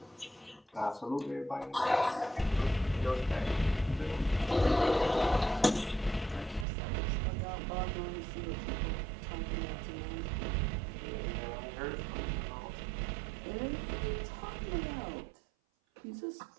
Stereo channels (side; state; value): left; drops out; at 6.7 s